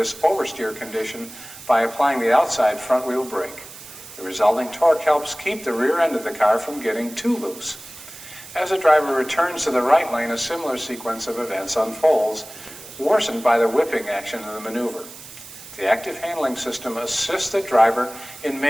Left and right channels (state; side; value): noise; right; hiss, 16 dB below the sound